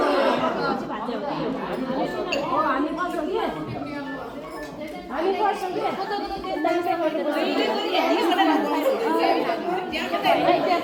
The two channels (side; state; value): both; identical; correlation 1.00